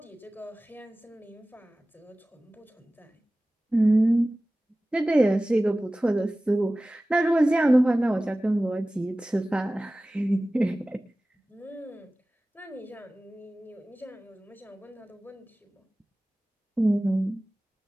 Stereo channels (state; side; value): normal; both; correlation 0.97